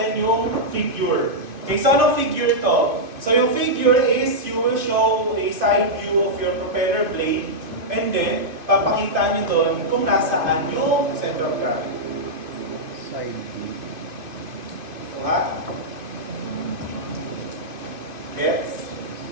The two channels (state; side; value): late; left; 2.5 ms